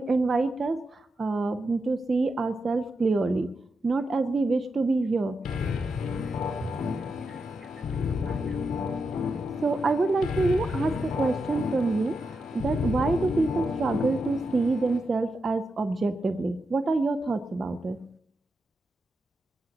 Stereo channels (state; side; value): normal; both; correlation 0.86